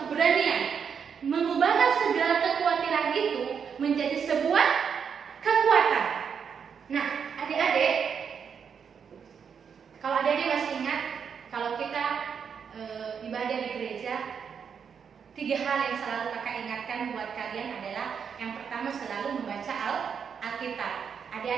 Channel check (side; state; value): left; quieter; 6.9 dB